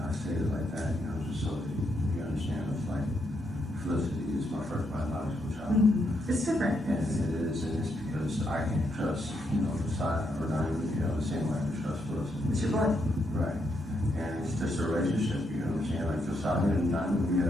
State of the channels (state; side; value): normal; both; correlation 0.78